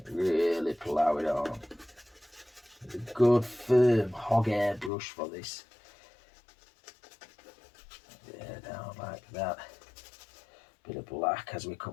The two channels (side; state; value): right; drops out; at 4.9 s